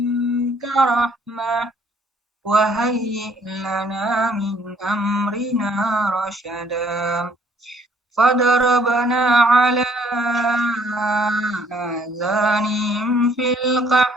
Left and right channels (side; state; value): both; normal; correlation 0.62